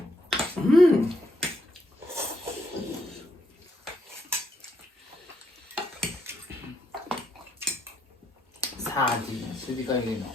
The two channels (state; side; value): normal; both; correlation 0.76